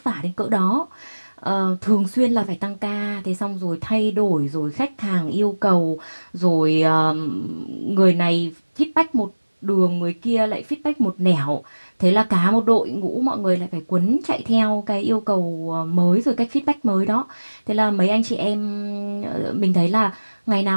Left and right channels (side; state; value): both; inverted; correlation -1.00